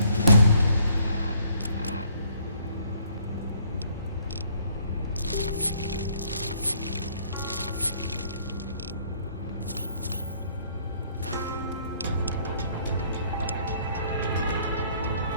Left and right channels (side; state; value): both; inverted; correlation -0.64